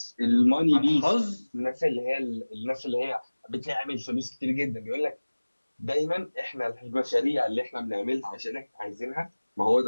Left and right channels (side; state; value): both; inverted; correlation -1.00